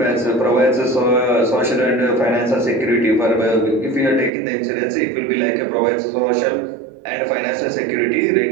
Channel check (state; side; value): drops out; left; at 4.3 s